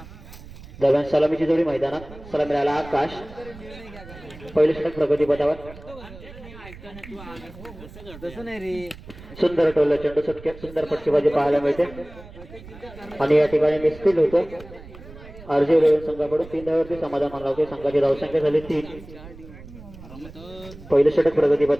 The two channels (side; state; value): right; noise; rumble, 17 dB below the sound